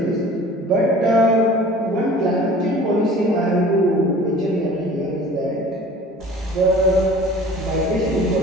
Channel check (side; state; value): both; normal; correlation 0.45